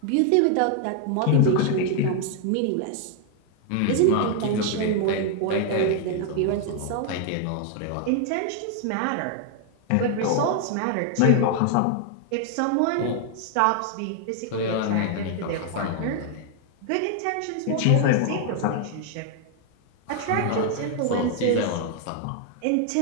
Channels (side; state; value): both; different; correlation 0.00